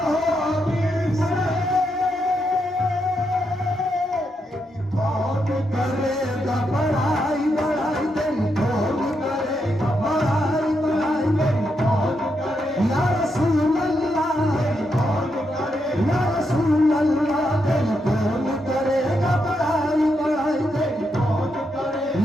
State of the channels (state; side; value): normal; both; correlation 0.82